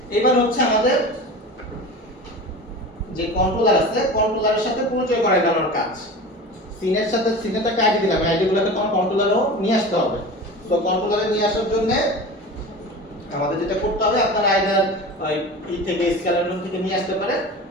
এবার হচ্ছে আমাদের যে কন্ট্রোলার আছে কন্ট্রোলারের সাথে পরিচয় করাই দেওয়ার কাজ সিনের সাথে সিনেটা একটা আইডি দিলাম আইডিগুলোকে কন্ট্রোলারও নিয়ে আসতে হবে তো কন্ট্রোলারে নিয়ে আসার জন্য আমাদের যেটা করতে হবে আপনারা আইদার ই থেকে স্কেলার রুম থেকে নিয়ে আসতে পারেন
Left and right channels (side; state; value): both; normal; correlation 0.33